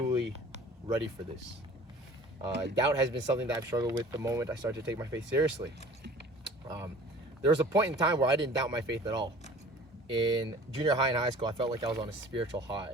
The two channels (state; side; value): normal; both; correlation 0.46